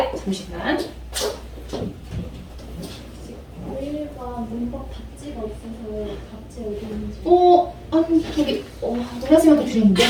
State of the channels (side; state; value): both; identical; correlation 1.00